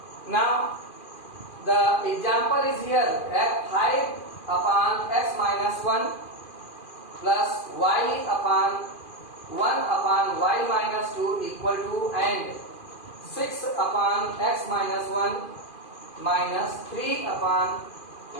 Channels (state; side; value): late; right; 2.5 ms